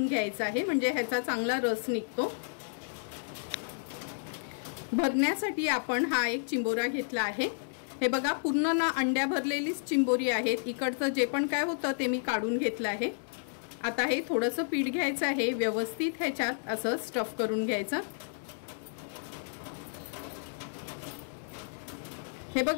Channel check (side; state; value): right; silent; digital silence